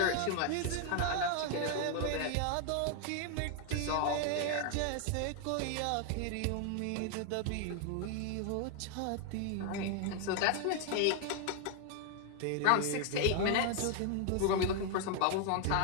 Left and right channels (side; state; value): both; different; correlation 0.00